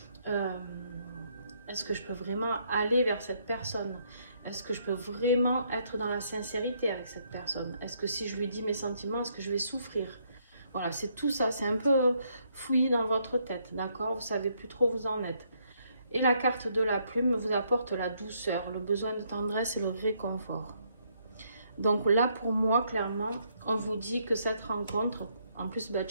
aller vers cette personne? Est-ce que je peux vraiment être dans la sincérité avec cette personne? Est-ce que si je lui dis mes sentiments, est-ce que je vais souffrir? Voilà, c'est tout ça, c'est un peu fouillé dans votre tête, d'accord? Vous savez plus trop où vous en êtes. Et la carte de la plume vous apporte la douceur, le besoin de tendresse et le réconfort. Donc là, pour moi, clairement, on vous dit que cette rencontre, en plus, bah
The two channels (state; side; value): inverted; both; correlation -0.72